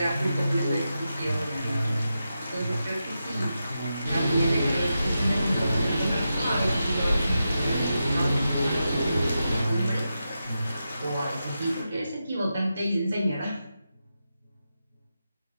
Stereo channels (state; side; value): inverted; both; correlation -0.89